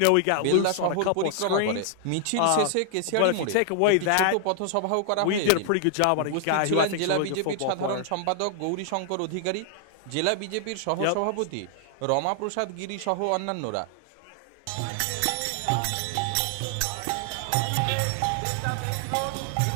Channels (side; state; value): both; different; correlation 0.00